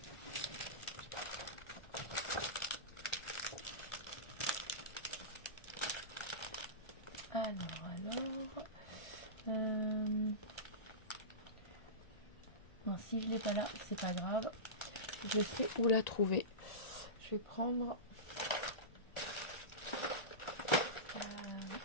Non, si je l'ai pas là, c'est pas grave. Je sais où la trouver. Je vais prendre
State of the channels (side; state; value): right; late; 1.4 ms